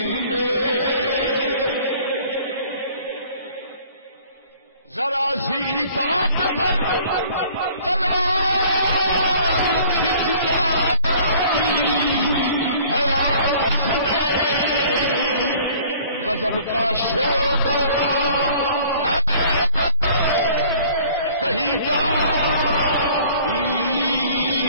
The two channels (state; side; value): inverted; both; correlation -0.52